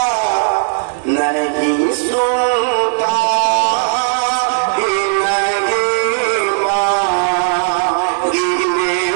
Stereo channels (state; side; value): silent; left; digital silence